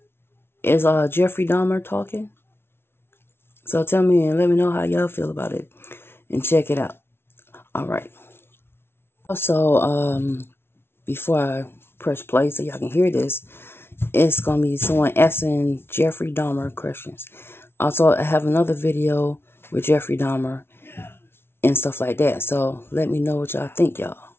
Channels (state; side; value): late; right; 0.12 ms